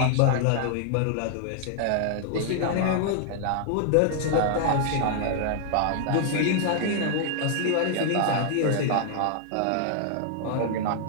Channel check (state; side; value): different; both; correlation -0.01